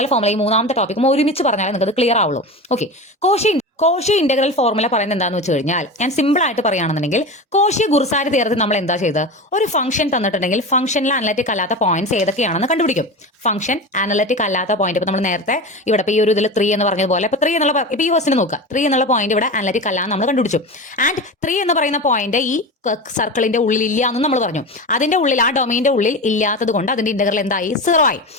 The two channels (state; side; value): normal; both; correlation 0.26